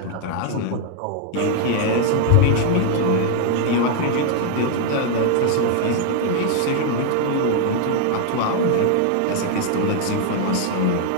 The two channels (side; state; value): both; different; correlation 0.00